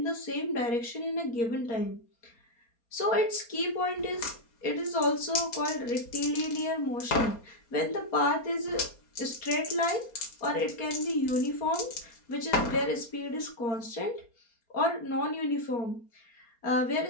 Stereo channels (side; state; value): right; late; 4.3 ms